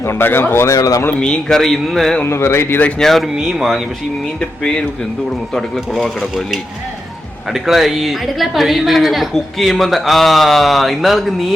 ഉണ്ടാക്കാൻ പോകുന്നേ ഉള്ളൂ. നമ്മൾ മീൻ കറി ഇന്ന് ഒന്ന് വെറൈറ്റി ചെയ്ത. ഞാൻ ഒരു മീൻ വാങ്ങി, പക്ഷെ ഈ മീനിന്റെ പേര് എന്തുകൂടെ മൊത്തം അടുക്കള കുളവാക്കി കിടക്കും അല്ലേ. അടുക്കള ഈ കുക്ക് ചെയ്യുമ്പോ ഇന്നാൾക്ക്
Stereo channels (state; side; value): normal; both; correlation 0.86